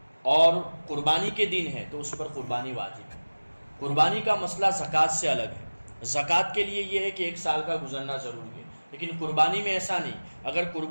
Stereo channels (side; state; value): both; inverted; correlation -1.00